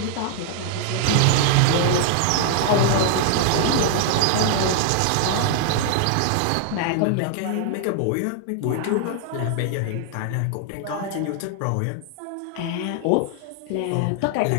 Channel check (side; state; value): both; different; correlation 0.00